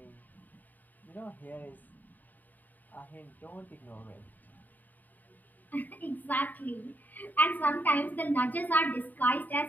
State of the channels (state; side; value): late; right; 0.085 ms